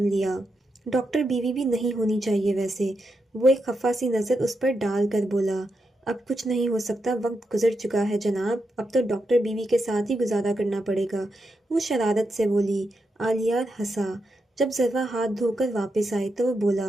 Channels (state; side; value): normal; both; correlation 0.85